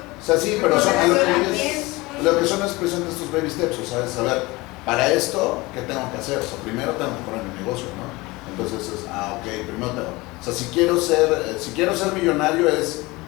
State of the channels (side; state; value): right; quieter; 22.3 dB